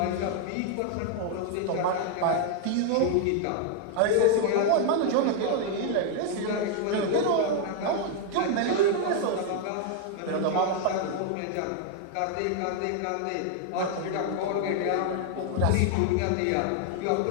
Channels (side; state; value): both; different; correlation 0.00